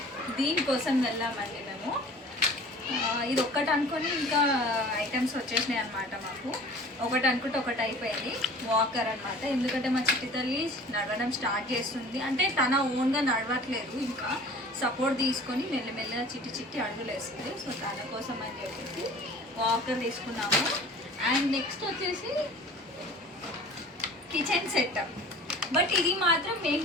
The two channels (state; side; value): normal; both; correlation 0.44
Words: దీనికోసం వెళ్ళామండి మేము. ఇది ఒక్కటి అనుకొని ఇంకా ఐటమ్స్ వచ్చేసినాయి అనమాట. మాకు ఒకటి అనుకుంటే ఒకటి అయిపోయింది. వాకర్ అనమాట. ఎందుకంటే మా చిట్టి తల్లి నడవడం స్టార్ట్ చేస్తుంది. అంటే తన ఓన్గా నడవట్లేదు, ఇంకా సపోర్ట్ తీసుకొని మెల్లమెల్లగా చిట్టి అడుగులు వేస్తుంది. సో తన కోసం అని చెప్పేసి వాకర్ తీసుకున్నాము. అండ్ నెక్స్ట్ వచ్చేసి కిచెన్ సెట్. బట్ ఇది మాత్రం